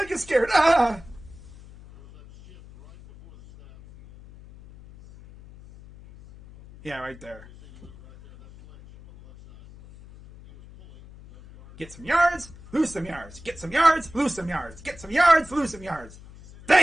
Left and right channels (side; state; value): left; noise; hum, 20 dB below the sound